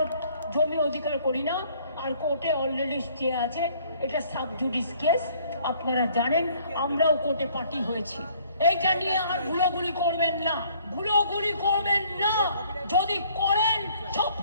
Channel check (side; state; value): both; inverted; correlation -0.60